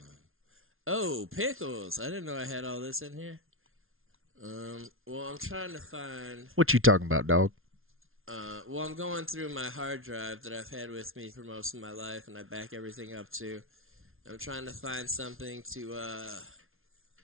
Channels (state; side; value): late; left; 0.61 ms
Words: Pickles. I didn't know I had all this in here. Well, I'm trying to find... What you talking about, dog? Well, I'm going through my hard drive that I've had with me for most of my life, and I back everything up to. I'm trying to find something to,